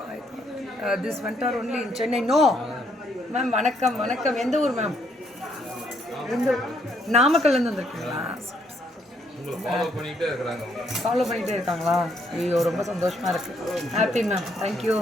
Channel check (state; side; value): normal; both; correlation 0.72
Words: This vendor only in Chennai. No ma'am. வணக்கம். எந்த ஊர் மேம்? நாமக்கல்லேருந்து வந்திருக்கீங்களா? ஃபாலோ பண்ணிகிட்டே இருக்காங்களா? ஐயோ, ரொம்ப சந்தோஷமாக இருக்குது. Happy ma'am, thank you.